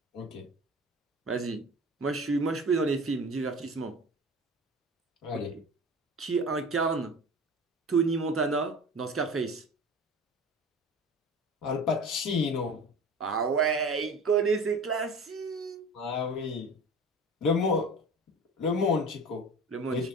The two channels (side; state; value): both; normal; correlation 0.36